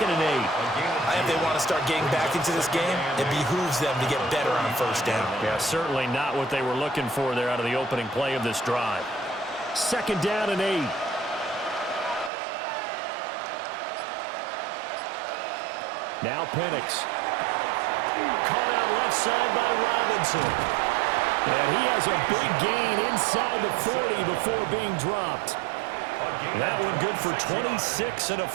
and 8. If they want to start getting back into this game, it behooves them to get better on 1st down. Yeah, certainly not what they were looking for there out of the opening play of this drive. 2nd down and 8. Now Penix. Caught out left side by Robinson. And he has a big gain inside the 40 before being dropped. That one good for 26 and a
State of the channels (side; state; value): left; drops out; at 12.3 s